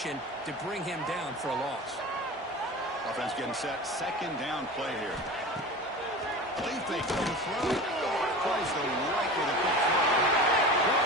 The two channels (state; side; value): normal; both; correlation 0.33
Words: to bring him down for a loss. Offense getting set. Second down play here. Lead fake to the throw. Plays the right with a quick throw.